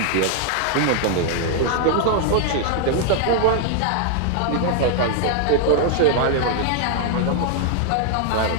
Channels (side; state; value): both; different; correlation 0.00